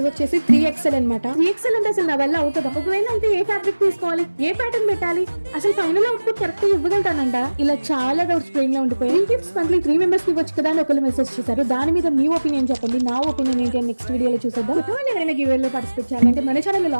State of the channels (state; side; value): inverted; both; correlation -1.00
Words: వచ్చేసి 3XL అనమాట. 3XL అంటే అసలు నా వల్ల అవుతుందా? ఒకవేళ అయితే ఏ ఫ్యాబ్రిక్ తీసుకోవాలి, ఏ ప్యాటర్న్ పెట్టాలి, అసలు ఫైనల్ అవుట్పుట్ కరెక్ట్ గా ఇవ్వగలుగుతానంట? ఇలా చాలా డౌట్స్ బ్రెయిన్ లో ఉండిపోయాయి. ఈ గిఫ్ట్స్ మంత్లీ 3 మెంబర్స్ కి ఇవ్వచ్చు కదా అని ఒకరు మెసేజ్ చేశారు. దాని మీద మీ ఒపీనియన్ చెప్పండి. నా ఒపీనియన్ ఏంటి అని నెక్స్ట్ వీడియోలో చూసేద్దాం. కొత్త వాళ్ళు ఎవరైనా గివ్ లో పార్టిసిపేట్ చేయాలంటే మన ఛానల్ లో